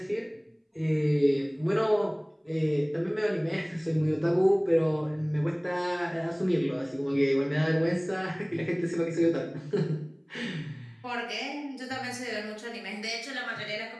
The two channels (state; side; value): identical; both; correlation 1.00